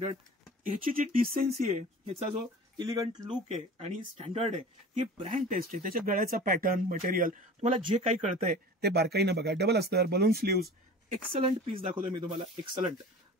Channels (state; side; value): normal; both; correlation 0.39